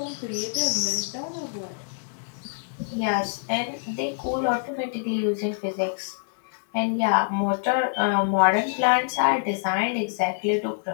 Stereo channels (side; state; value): right; silent; digital silence